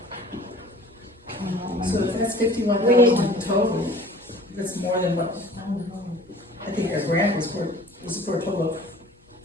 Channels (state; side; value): normal; both; correlation 0.47